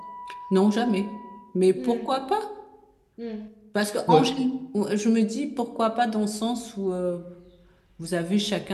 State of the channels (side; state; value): both; identical; correlation 1.00